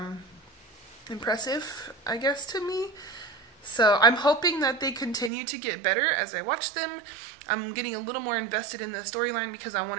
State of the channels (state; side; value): drops out; left; at 5.3 s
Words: impressive, I guess, to me. So I'm hoping that they continue to get better as I watch them. I'm getting a little more invested in the storyline, because I